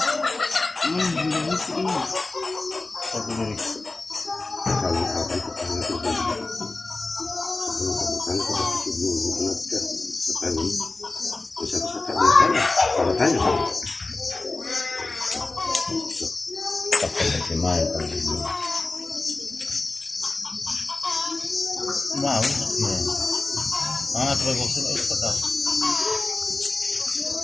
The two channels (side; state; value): right; quieter; 3.3 dB